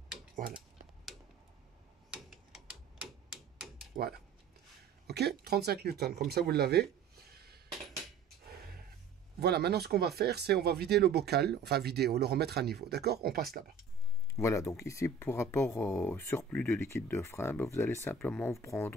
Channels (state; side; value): quieter; left; 4.9 dB